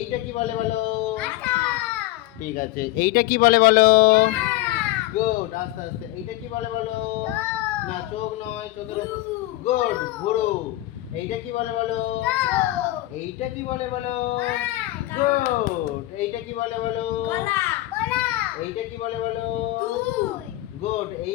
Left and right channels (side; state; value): right; quieter; 17.1 dB